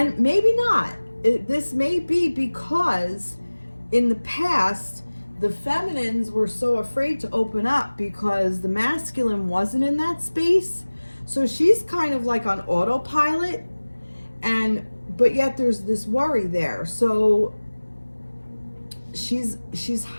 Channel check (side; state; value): both; inverted; correlation -1.00